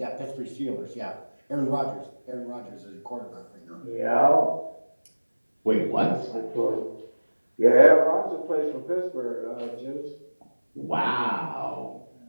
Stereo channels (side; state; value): both; inverted; correlation -1.00